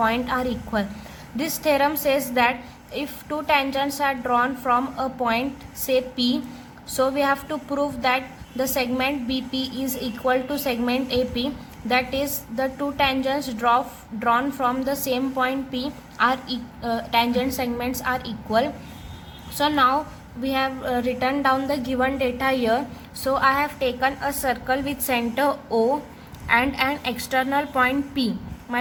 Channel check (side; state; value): both; identical; correlation 1.00